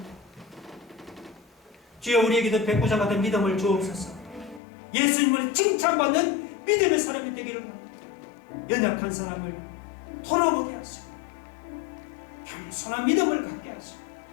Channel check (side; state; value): right; drops out; at 4.6 s